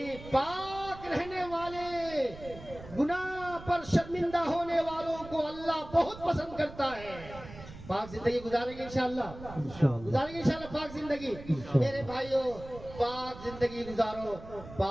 پاک رہنے والے، گناہ پر شرمندہ ہونے والوں کو اللہ بہت پسند کرتا ہے. پاک زندگی گزاریں گے انشاءاللہ. گزاریں گے انشاءاللہ پاک زندگی. میرے بھائیوں، پاک زندگی گزارو.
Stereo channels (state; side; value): noise; right; rumble, 15 dB below the sound